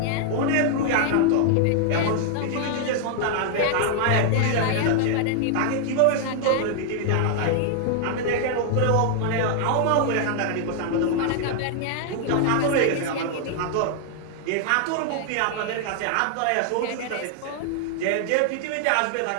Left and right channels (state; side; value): different; both; correlation 0.00